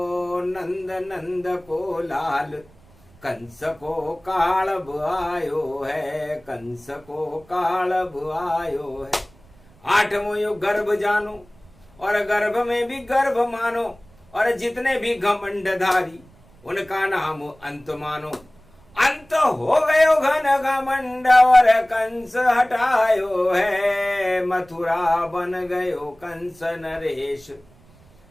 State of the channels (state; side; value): noise; right; rumble, 28 dB below the sound